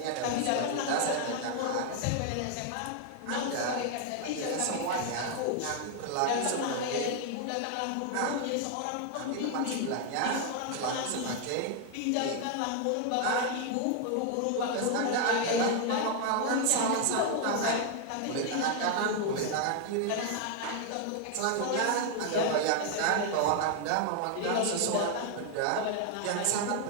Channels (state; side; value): different; both; correlation 0.00